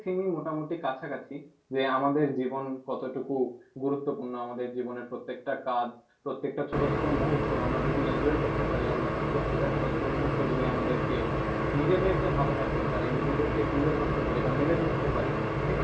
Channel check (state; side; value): identical; both; correlation 1.00